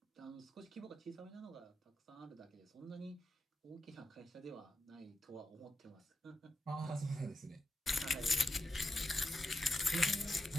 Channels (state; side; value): normal; both; correlation 0.87